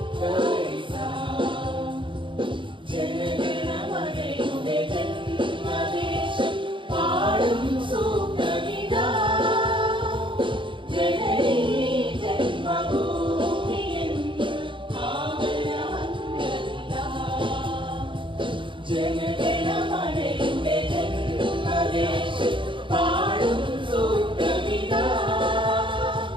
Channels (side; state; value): left; late; 0.24 ms